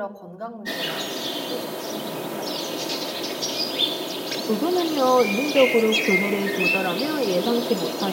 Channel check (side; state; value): both; identical; correlation 1.00